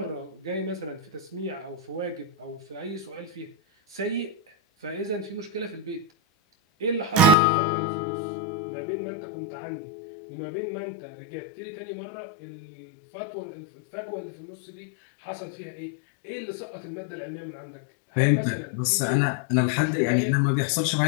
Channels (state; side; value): drops out; right; at 7.4 s